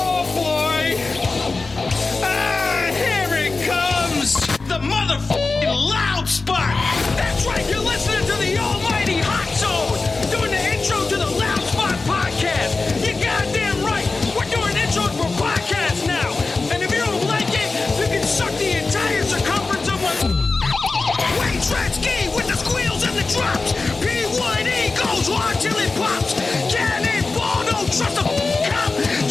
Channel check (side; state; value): right; quieter; 3.8 dB